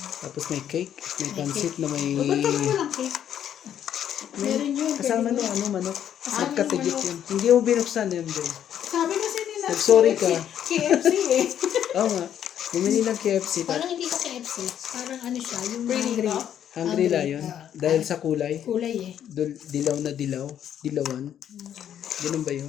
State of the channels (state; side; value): quieter; right; 9.9 dB